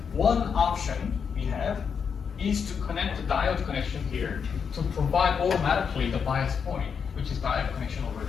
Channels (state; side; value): quieter; right; 6.6 dB